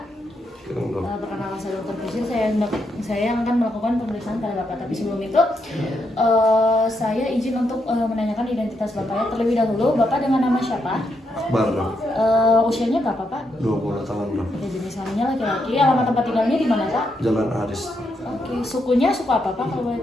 Perkenalkan saya Dr. Pusin. Saya yang akan melakukan pemeriksaan pada Bapak. Tapi sebelum itu saya izin untuk menanyakan identitas Bapak ya. Terlebih dahulu, Bapak dengan nama siapa? Akbar. Usianya berapa Pak? 20 tahun. Oke, jenis kelaminnya laki-laki. Alamat tempat tinggalnya di mana Pak? Jalan Aris. Oke, sukunya suku apa Pak kalau boleh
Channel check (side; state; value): both; normal; correlation 0.80